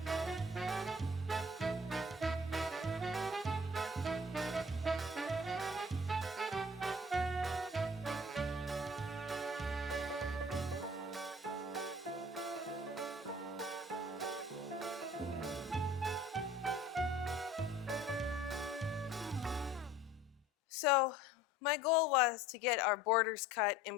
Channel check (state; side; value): normal; both; correlation 0.50